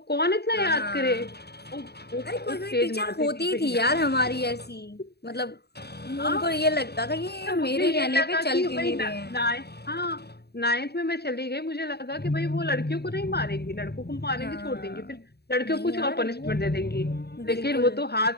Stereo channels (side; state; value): right; late; 0.48 ms